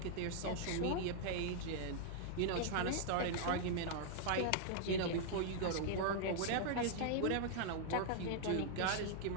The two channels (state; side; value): different; both; correlation -0.01